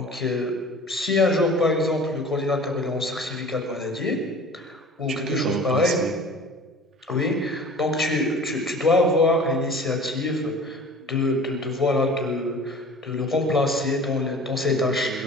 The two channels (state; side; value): normal; both; correlation 0.43